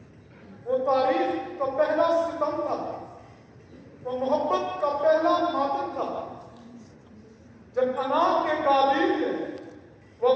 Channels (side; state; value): both; identical; correlation 1.00